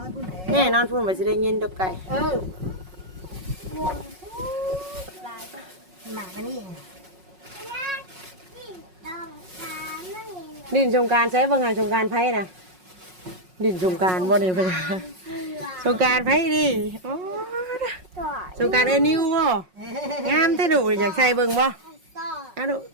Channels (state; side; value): late; left; 5.5 ms